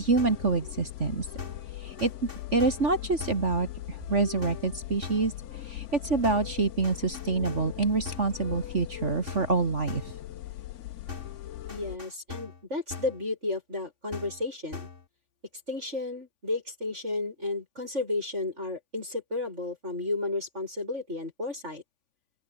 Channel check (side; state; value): left; late; 3.5 ms